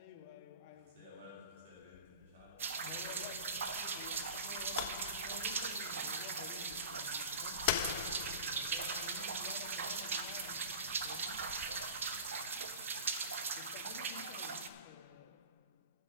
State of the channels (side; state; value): both; inverted; correlation -0.33